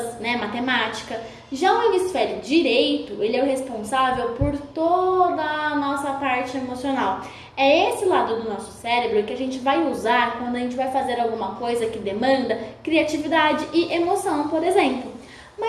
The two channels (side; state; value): both; identical; correlation 1.00